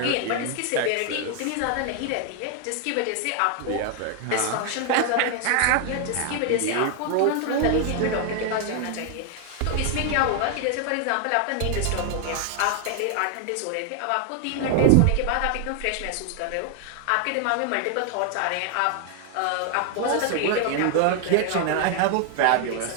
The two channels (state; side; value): different; both; correlation 0.00